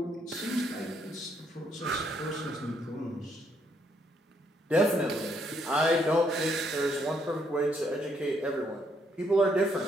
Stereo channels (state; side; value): normal; both; correlation 0.73